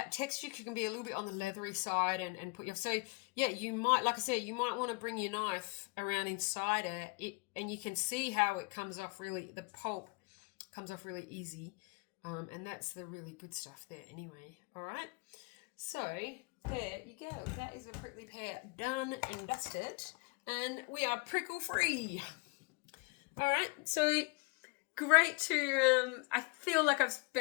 texture can be a little bit on the leathery side and put you off. So yeah, you might, like I said, you might want to bring your knife around inside it, and you can see how it comes off really, the pulp comes off really easy. And that's the really good stuff there anyway. All right. So there you go. That is a prickly pear done and dusted. And we are prickle free. All right. So great to, I feel like I've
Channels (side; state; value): right; quieter; 30.0 dB